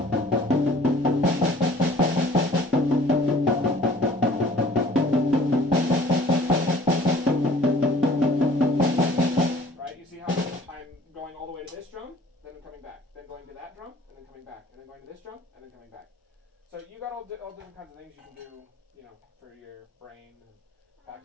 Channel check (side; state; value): both; normal; correlation 0.52